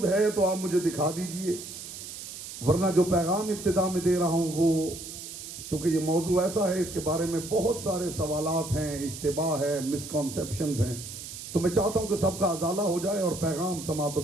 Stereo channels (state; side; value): noise; right; hiss, 11 dB below the sound